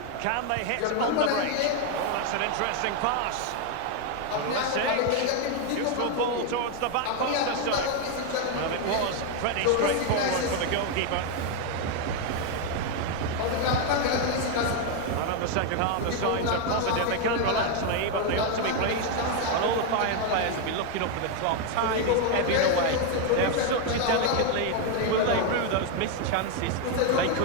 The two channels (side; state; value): both; different; correlation 0.01